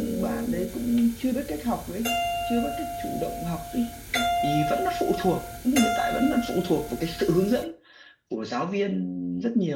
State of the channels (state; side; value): identical; both; correlation 1.00